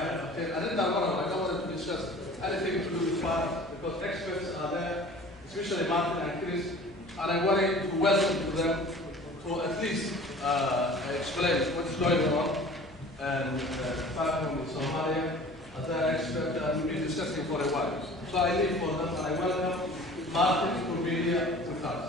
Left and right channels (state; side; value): noise; left; hum, 23 dB below the sound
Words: ay qabteen. arrintaan mar hore I don't want to discuss anything to do with fire because experts are there, especially Martin and Chris, and I wanted to welcome to them to at least explain what is going on and fire from Somalia as an expert and we've been discussing for a while. So I leave for them and I welcome Martin to be here with